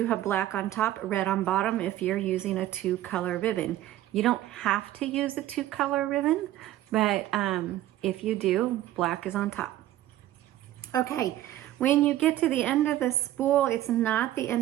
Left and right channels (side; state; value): left; quieter; 14.0 dB